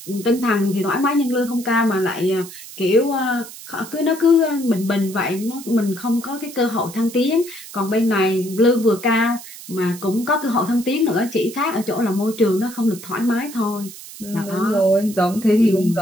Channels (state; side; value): noise; right; hiss, 15 dB below the sound